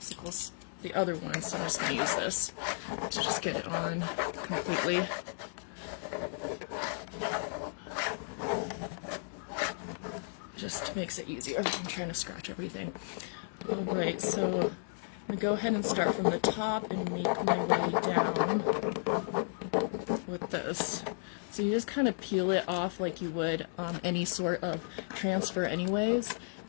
the other one, so I'm just going to use this to just get it on completely. Just makes it easier. I'm trying to scratch everything. Alright, so I'm going to go ahead and start from the top and make my way down with this. So you just kind of peel it off like you would any sort of transfer anyways,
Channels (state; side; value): silent; right; digital silence